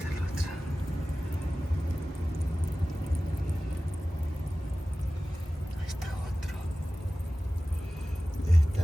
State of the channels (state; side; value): normal; both; correlation 0.96